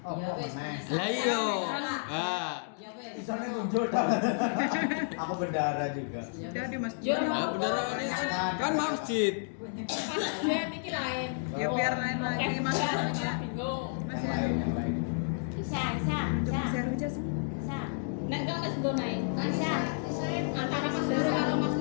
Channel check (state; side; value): silent; right; digital silence